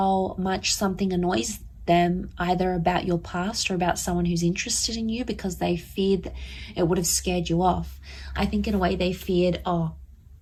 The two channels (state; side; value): identical; both; correlation 1.00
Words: much something annoys them, either about your past or about someone who's interested in you, because they feared that it would have scared you off. I think in a way they feared, oh,